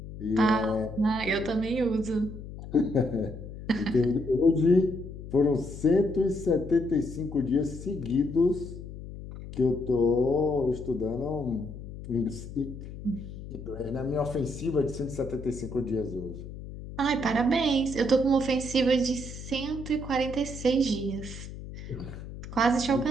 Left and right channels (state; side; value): noise; left; hum, 11 dB below the sound